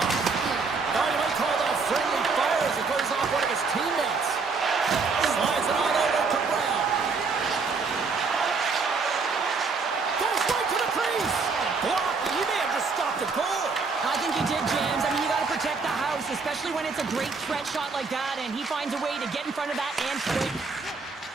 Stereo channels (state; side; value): quieter; left; 4.6 dB